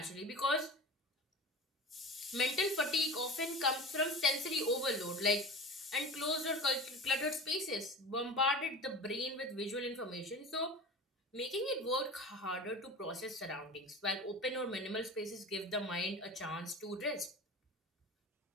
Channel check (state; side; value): normal; both; correlation 0.33